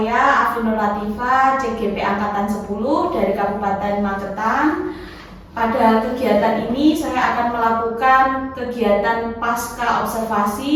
Afinul Latifah, CGP Angkatan 10 dari Kabupaten Magetan. Pada kegiatan ini saya akan melakukan kegiatan pasca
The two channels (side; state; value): both; identical; correlation 1.00